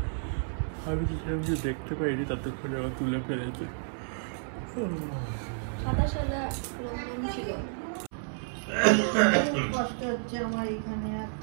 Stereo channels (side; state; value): left; silent; 57 dB below the other